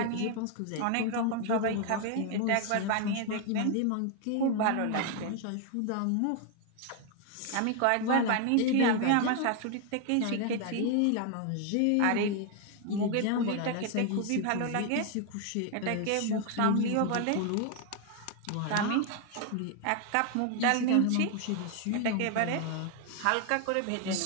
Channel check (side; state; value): both; different; correlation 0.00